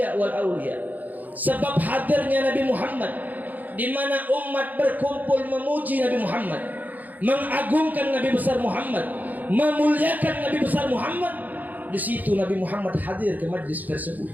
wal aulia. Sebab hadirnya Nabi Muhammad, di mana umat berkumpul memuji Nabi Muhammad, mengagungkan Nabi besar Muhammad, memuliakan Nabi besar Muhammad, di situ Nabi Muhammad hadir ke majlis tersebut.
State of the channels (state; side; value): late; left; 0.082 ms